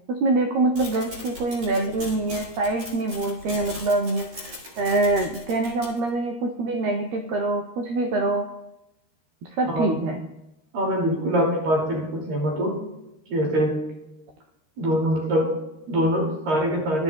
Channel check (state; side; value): late; left; 13 ms